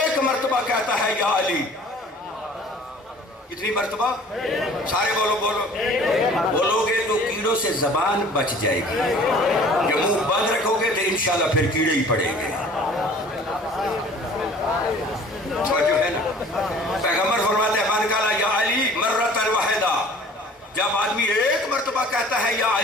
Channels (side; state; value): both; normal; correlation 0.49